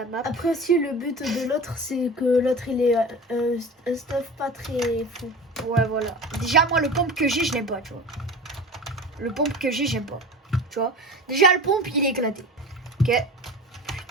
map. Après aussi, le but de l'autre, c'est que l'autre, il ait un stuff pas très fou. Ouais, voilà. Déjà, moi, le pompe que j'ai, je l'aime pas, tu vois. Le pompe que j'ai, j'aime pas. Tu vois. Déjà, le pompe, il est éclaté. Ok.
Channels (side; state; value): both; normal; correlation 0.33